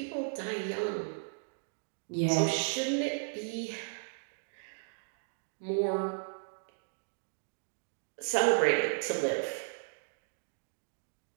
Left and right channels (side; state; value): left; silent; digital silence